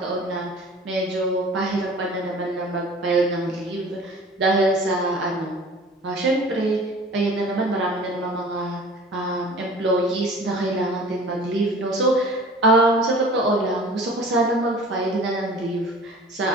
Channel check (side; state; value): both; normal; correlation 0.44